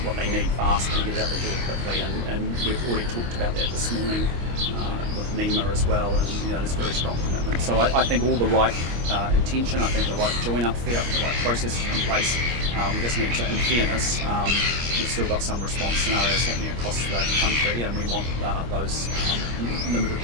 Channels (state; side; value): late; left; 25 ms